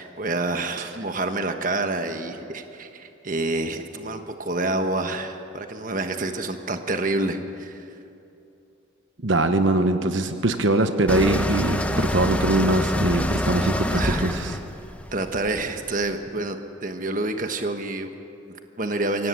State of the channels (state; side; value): normal; both; correlation 0.39